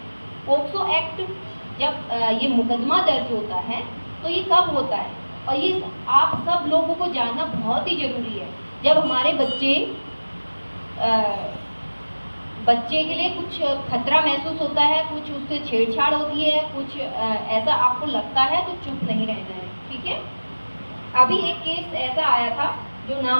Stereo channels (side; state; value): both; inverted; correlation -1.00